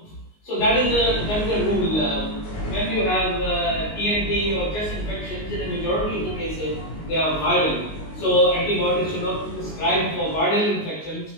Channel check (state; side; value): late; right; 19 ms